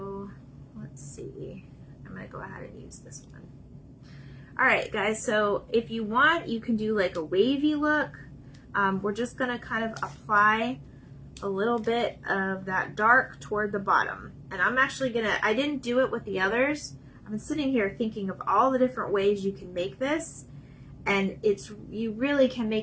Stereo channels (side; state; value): both; identical; correlation 1.00